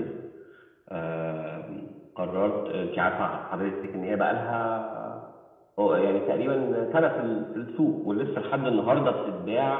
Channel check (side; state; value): both; identical; correlation 1.00